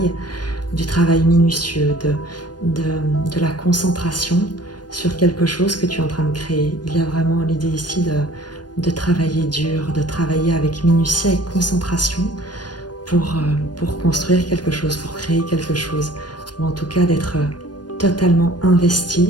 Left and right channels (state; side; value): late; right; 0.69 ms